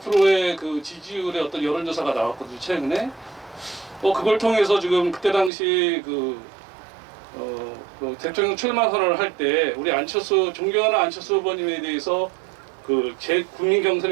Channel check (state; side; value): drops out; left; at 5.5 s